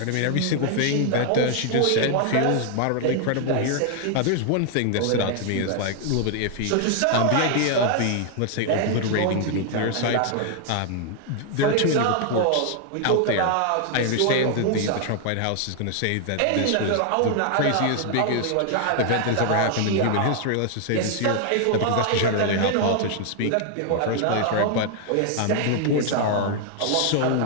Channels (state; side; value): different; both; correlation 0.00